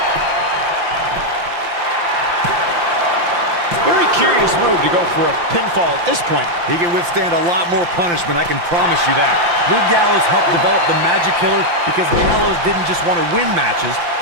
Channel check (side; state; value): left; late; 5.8 ms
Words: Very curious move to go for a pinfall at this point. He can withstand a lot more punishment, I can promise you that. Luke Gallows helped develop the Magic Killer because Gallows didn't just want to win matches,